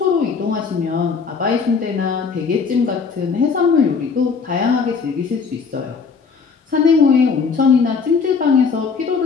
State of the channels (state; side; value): quieter; right; 5.4 dB